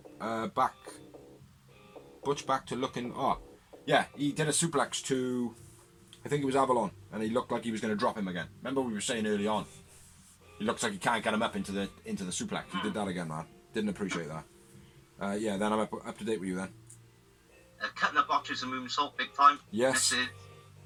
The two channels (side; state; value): both; identical; correlation 1.00